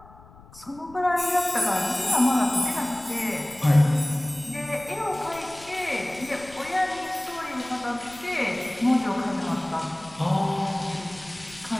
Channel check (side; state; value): left; noise; rumble, 22 dB below the sound